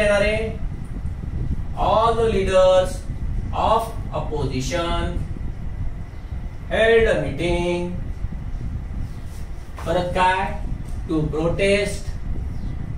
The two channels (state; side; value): identical; both; correlation 1.00